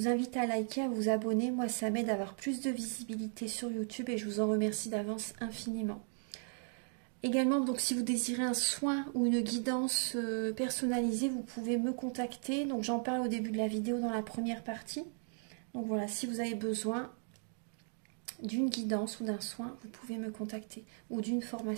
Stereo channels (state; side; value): silent; left; 53 dB below the other